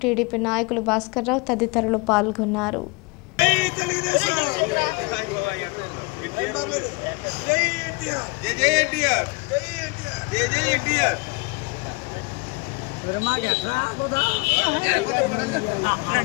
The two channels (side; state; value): right; quieter; 27.6 dB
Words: టీడీపీ నాయకులు భాస్కర్ రావు తదితరులు పాల్గొన్నారు.